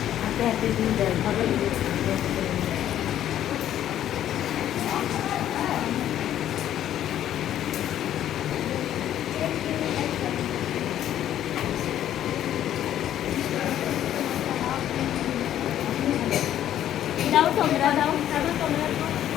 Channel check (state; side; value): quieter; right; 11.4 dB